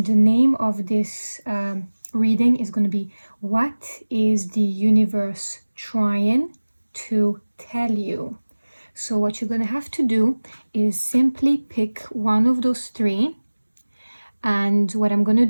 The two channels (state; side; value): inverted; both; correlation -1.00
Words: the name of this reading is going to be what is the universe trying to tell you. So what you're going to have to do is simply pick one of those 3, and what I'm going to